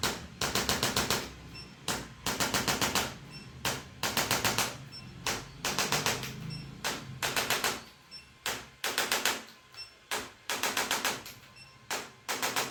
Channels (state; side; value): identical; both; correlation 1.00